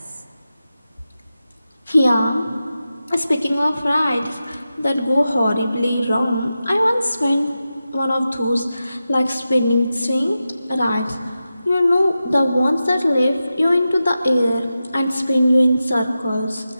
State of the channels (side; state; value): both; inverted; correlation -0.92